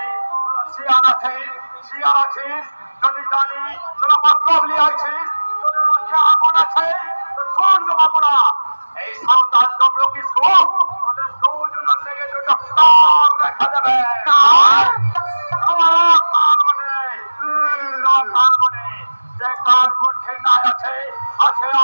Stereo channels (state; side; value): inverted; both; correlation -1.00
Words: শিয়াল আছিস, শিয়াল আছিস, যদি জানি তোরা মতলব লিয়াছিস, তোদের আছে আগুন আছে, তো শোন জমাবুড়া, এই সাঁওতাল তমলুকি সুখ তোদের দুজনের লেগে দুটো কান রেখে দেবে। আমার কান মানে কান মানে যে কার মধ্যে নাই আছে, আছে